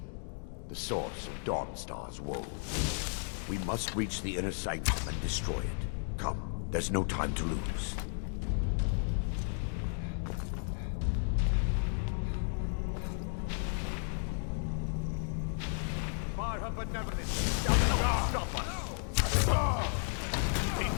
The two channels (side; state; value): right; silent; 55 dB below the other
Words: the source of Dawnstar's woe. We must reach the inner sanctum and destroy it. Come, there's no time to lose. By her benevolence, stop us! Be